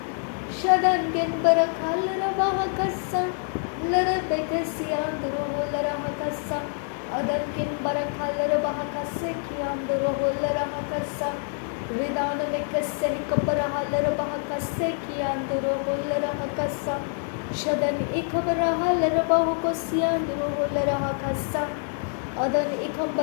शदंगिन बरखलर बहकसा लरबेक सियांदुरो होलरा हकसा अदंगिन बरखलर बहकसे कियांदुरो होलरा हकसा रिदान में कसे कबरहलर बहकसे कियांदुरो होलरा हकसा शदन इखबरहलर बहुको सियांदुरो होलरा हकसा अदन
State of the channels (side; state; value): right; silent; 56 dB below the other